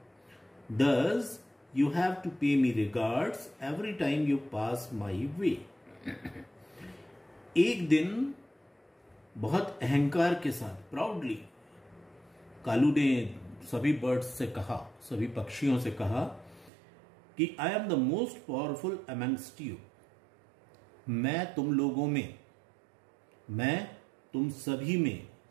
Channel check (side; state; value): left; drops out; at 16.7 s